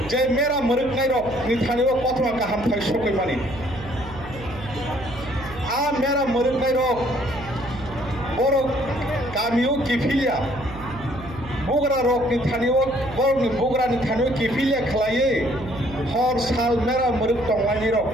जे मेरा मरुक नाय रक निथानिबो कथमा काहाम थाय सकै मानि आ मेरा मरुक नाय रक बरो गामियो किफिलिया बोगरा रक निथानिबो बरनि बोगरा निथानिबो किफिलिया खलाये हर साल मेरा मरुक तंगानि रक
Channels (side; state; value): right; noise; hum, 14 dB below the sound